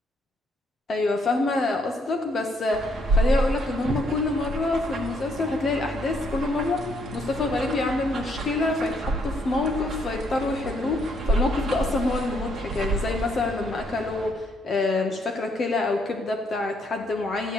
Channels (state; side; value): normal; both; correlation 0.71